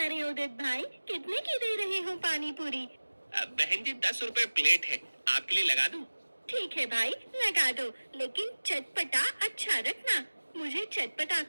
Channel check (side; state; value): both; inverted; correlation -1.00